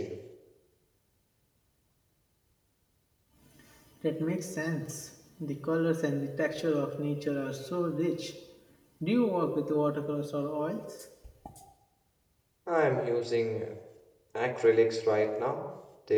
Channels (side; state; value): both; identical; correlation 1.00